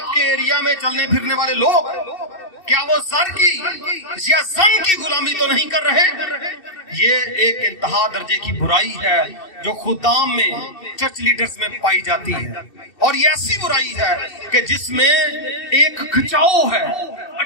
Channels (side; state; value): right; late; 2.6 ms